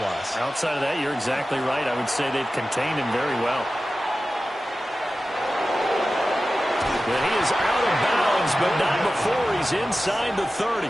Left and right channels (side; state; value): both; normal; correlation 0.94